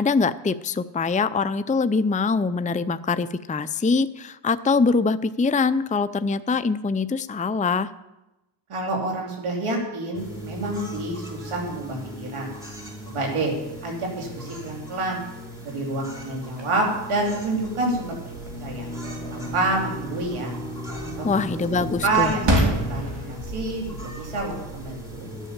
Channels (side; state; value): both; normal; correlation 0.32